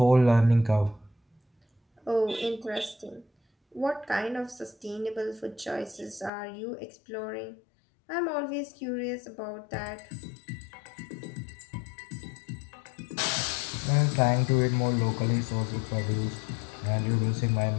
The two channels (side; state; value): right; drops out; at 6.3 s